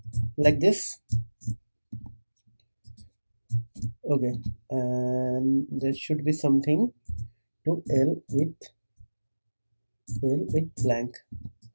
like this. Okay, and there should be something to L with blank.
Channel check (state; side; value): inverted; both; correlation -1.00